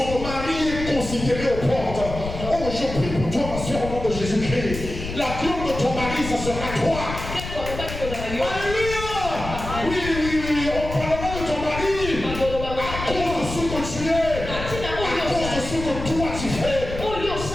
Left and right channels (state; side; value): noise; left; rumble, 8 dB below the sound